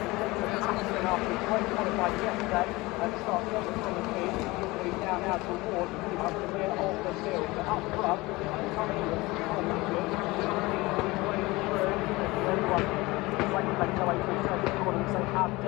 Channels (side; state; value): right; quieter; 21.8 dB